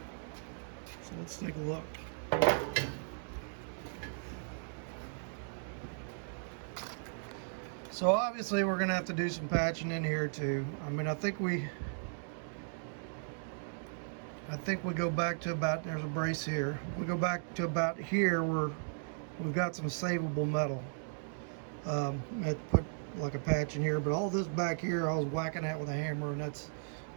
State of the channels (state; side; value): silent; left; digital silence